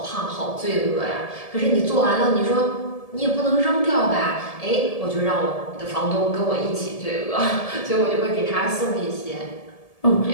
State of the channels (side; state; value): right; late; 1.7 ms